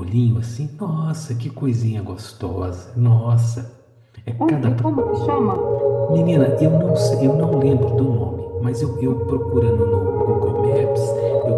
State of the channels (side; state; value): both; identical; correlation 1.00